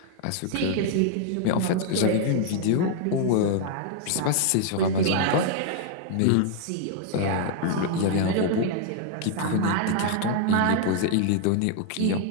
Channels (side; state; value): both; different; correlation 0.00